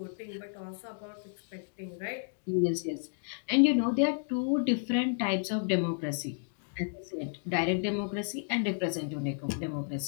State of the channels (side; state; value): right; silent; digital silence